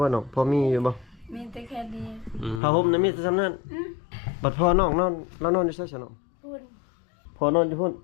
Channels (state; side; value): drops out; right; at 2.6 s